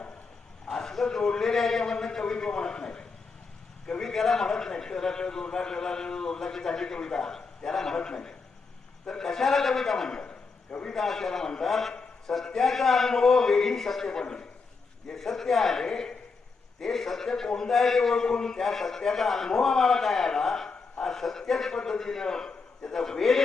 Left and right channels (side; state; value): right; quieter; 4.6 dB